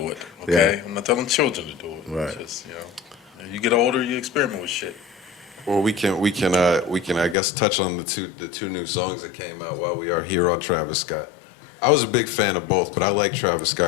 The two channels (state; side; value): drops out; right; at 7.4 s